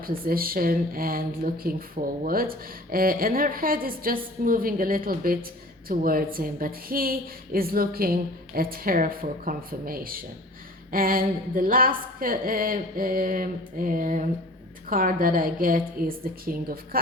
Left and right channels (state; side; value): normal; both; correlation 0.44